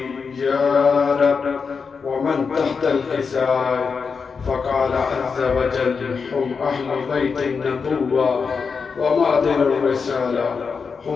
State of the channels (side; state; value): right; quieter; 5.4 dB